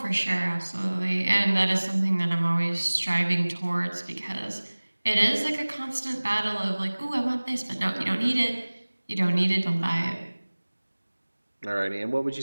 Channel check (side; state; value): both; inverted; correlation -1.00